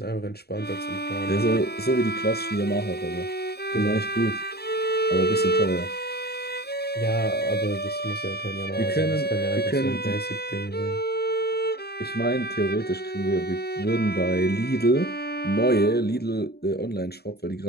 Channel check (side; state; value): right; late; 0.47 ms